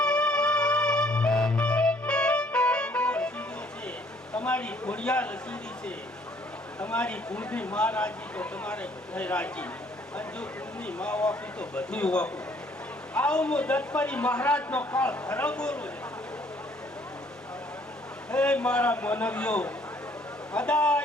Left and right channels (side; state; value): both; normal; correlation 0.62